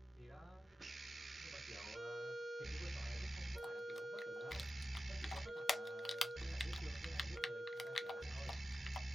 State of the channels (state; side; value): normal; both; correlation 0.92